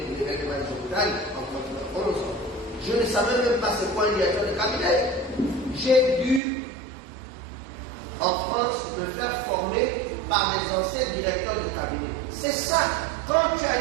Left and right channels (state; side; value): drops out; left; at 6.4 s